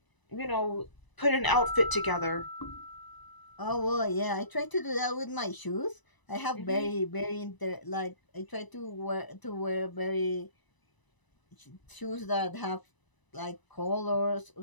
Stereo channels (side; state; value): right; late; 1.0 ms